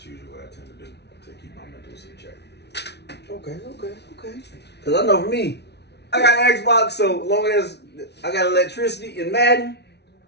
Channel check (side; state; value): right; late; 0.49 ms